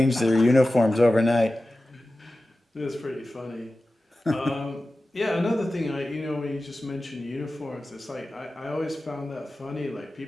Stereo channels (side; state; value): both; normal; correlation 0.95